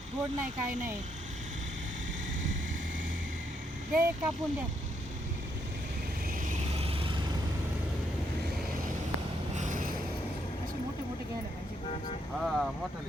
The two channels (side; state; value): both; normal; correlation 0.76